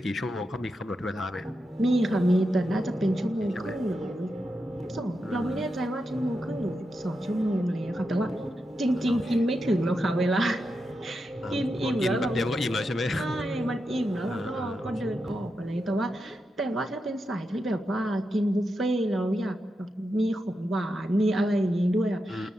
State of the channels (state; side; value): normal; both; correlation 0.87